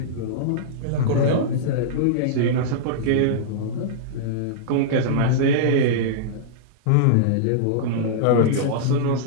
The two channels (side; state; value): both; different; correlation -0.02